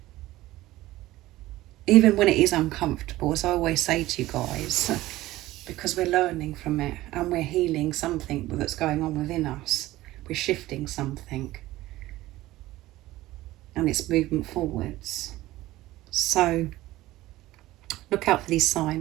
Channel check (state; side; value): quieter; left; 16.8 dB